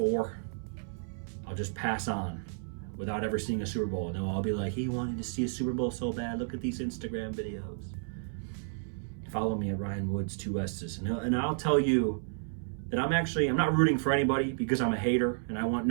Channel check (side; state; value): left; silent; 57 dB below the other